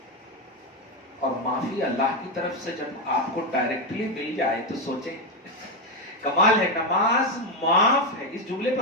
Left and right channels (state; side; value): normal; both; correlation 0.08